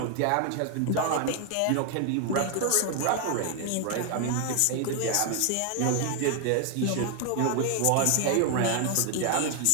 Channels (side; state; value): both; different; correlation 0.00